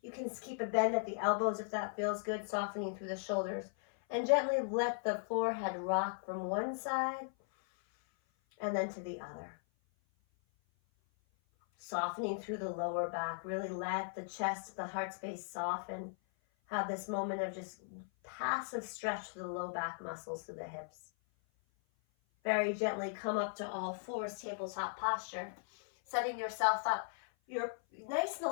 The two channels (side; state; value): right; silent; 53 dB below the other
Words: You can keep a bend at the elbows if that feels good, softening through the shoulders. And gently let the forehead rock from one side and then to the other. Softening through the lower back. Really let the chest, the heart space soften. Have this moment of just passive stretch through the low back muscles through the hips. Very gently come up to all fours, tabletop posture. Setting yourself up. You're nice and